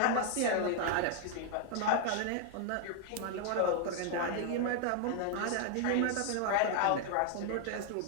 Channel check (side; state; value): both; different; correlation 0.00